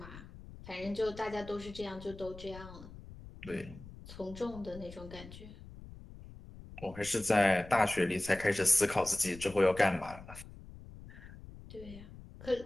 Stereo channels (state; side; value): noise; left; rumble, 16 dB below the sound